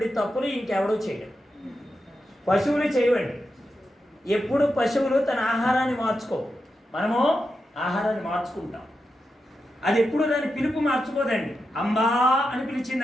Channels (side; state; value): both; normal; correlation 0.88